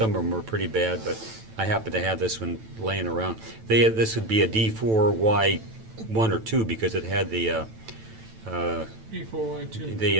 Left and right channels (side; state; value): left; late; 9.1 ms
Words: of them were pretty bad, but I happened to have this one laying around. This would be a D4Y1 or 2 because it had the D4Y2.